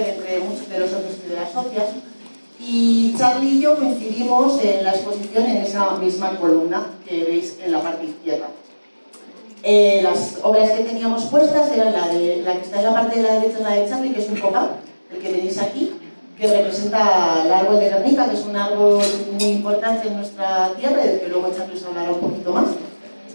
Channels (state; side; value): inverted; both; correlation -1.00